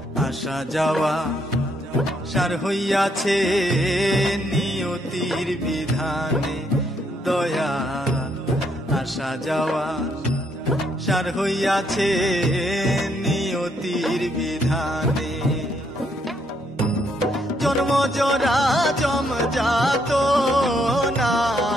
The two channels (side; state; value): both; normal; correlation 0.73